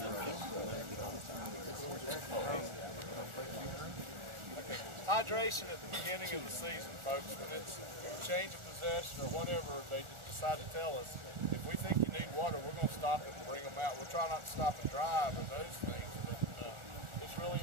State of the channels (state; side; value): late; left; 1.4 ms